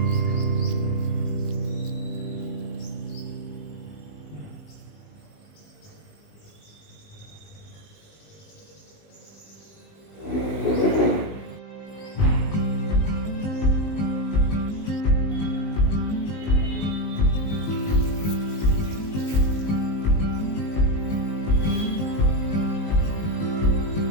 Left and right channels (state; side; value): late; right; 19 ms